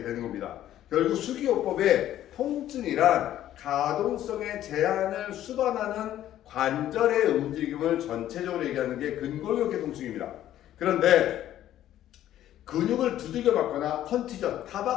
되는 겁니다. 결국 수기요법의 통증이란 가동성의 제한을 수반하는 관절의 움직임을 전체적으로 얘기하는 게 근골격계 통증입니다. 그런데 근육을 두들겨 맞거나 컨티전,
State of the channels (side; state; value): right; quieter; 12.4 dB